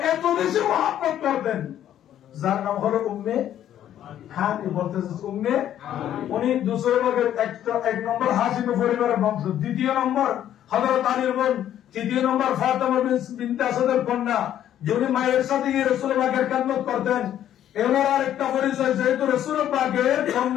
এত বেশি মহব্বত করতেন, যার নাম হলো উম্মে হানি। বলতে যাচ্ছি উম্মে, উনি দুসরে ভাগের এক নম্বর হাশিম পরিবারের বংশ, দ্বিতীয় নম্বর হযরত আলীর বোন, তৃতীয় নম্বর ফাতেমা বিনতে আসাদের কন্যা, যিনি মায়ের সাথে গিয়ে রাসূলুল্লাহ পাকের খেদমত করতেন। এনার আরেকটা পরিচয়, যেহেতু রাসূলুল্লাহ পাকের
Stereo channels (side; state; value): right; quieter; 11.1 dB